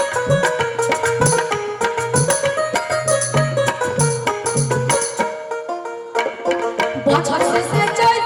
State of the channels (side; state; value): both; identical; correlation 1.00